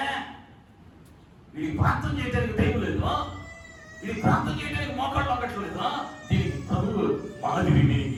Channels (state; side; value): identical; both; correlation 1.00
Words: వీడికి ప్రార్థన చేయడానికి టైం లేదు, వీడికి ప్రార్థన చేయడానికి మోకాళ్ళు అక్కట్లేదు. దీనికి ప్రభువు మాదిరి.